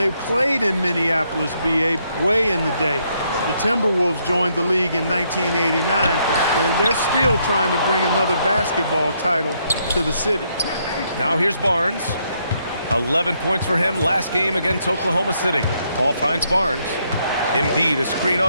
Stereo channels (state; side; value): inverted; both; correlation -0.74